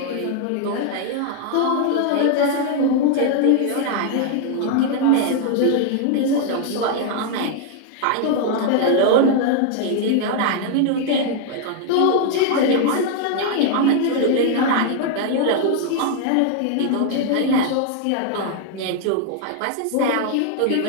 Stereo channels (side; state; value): both; different; correlation 0.00